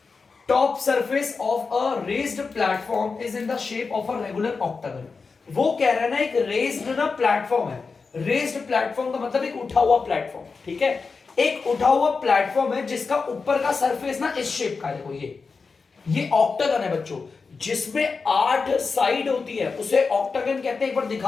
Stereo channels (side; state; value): right; quieter; 4.7 dB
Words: Top surface of a raised platform is in the shape of a regular octagon. वो कह रहा है ना, एक रेज्ड ना प्लेटफॉर्म है। रेज्ड प्लेटफॉर्म का मतलब एक उठा हुआ प्लेटफॉर्म, ठीक है। एक उठा हुआ प्लेटफॉर्म है जिसका ऊपर का सरफेस ना इस शेप का है। देखो ये ऑक्टागन है बच्चों, जिसमें 8 साइड होती है, उसे ऑक्टागन कहते हैं। एक बार